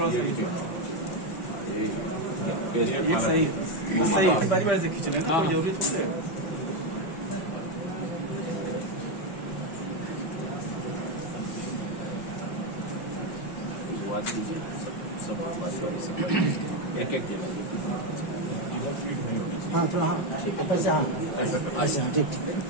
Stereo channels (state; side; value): late; right; 5.1 ms